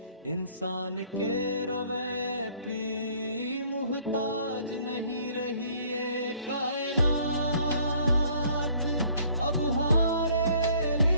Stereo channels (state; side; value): inverted; both; correlation -0.59